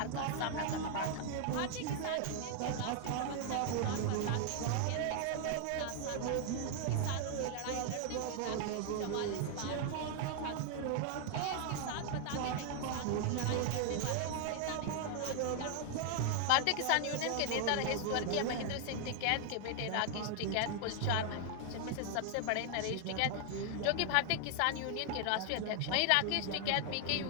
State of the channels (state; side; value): different; both; correlation 0.00